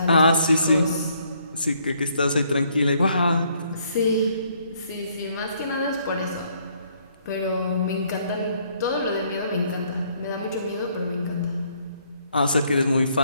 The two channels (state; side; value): inverted; both; correlation -0.68